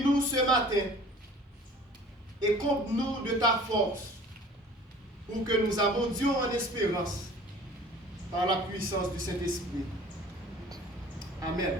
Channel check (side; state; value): both; normal; correlation 0.47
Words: ce matin et comble-nous de ta force pour que nous abondions en espérance par la puissance du Saint-Esprit. Amen.